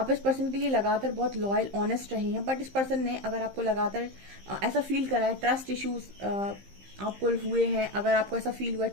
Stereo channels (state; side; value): late; left; 15 ms